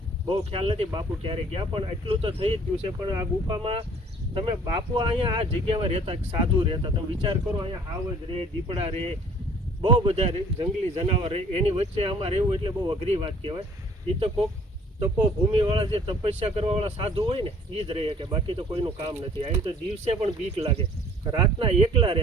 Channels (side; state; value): both; normal; correlation 0.53